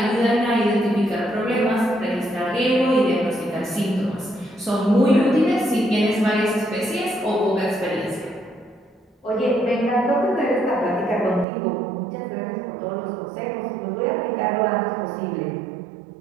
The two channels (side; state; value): left; drops out; at 11.5 s